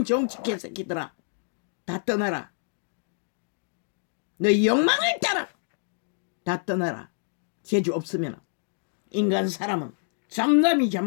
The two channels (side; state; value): right; silent; digital silence